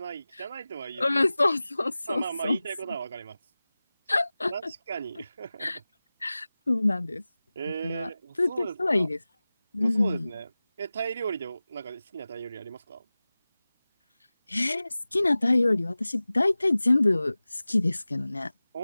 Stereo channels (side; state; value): both; inverted; correlation -0.97